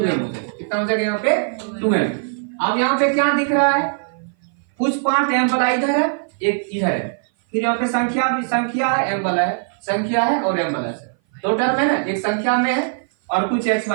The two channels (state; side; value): silent; left; 58 dB below the other